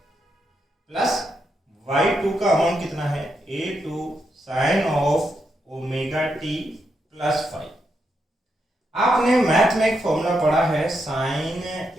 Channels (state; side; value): normal; both; correlation 0.82